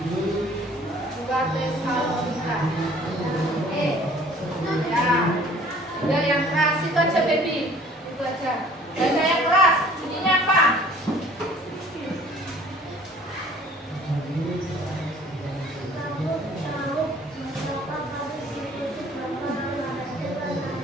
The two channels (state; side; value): normal; both; correlation 0.53